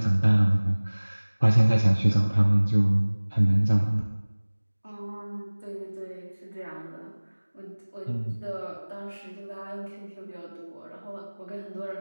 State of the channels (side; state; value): both; inverted; correlation -1.00